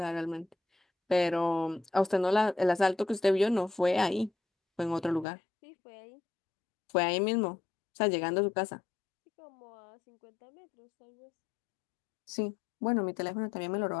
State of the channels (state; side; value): drops out; right; at 5.2 s